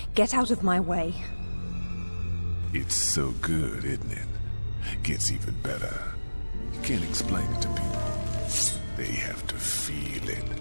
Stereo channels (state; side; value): inverted; both; correlation -1.00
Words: Get out of my way. It's so good, isn't it? Gets even better. You can't explain it to people. They have to feel it.